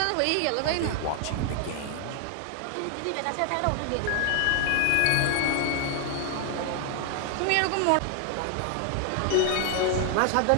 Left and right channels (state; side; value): different; both; correlation 0.00